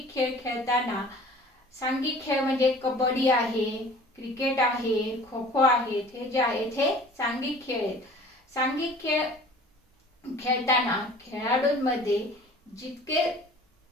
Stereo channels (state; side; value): normal; both; correlation 0.46